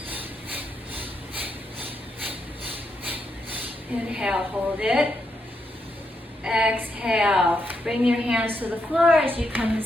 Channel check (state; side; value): normal; both; correlation 0.81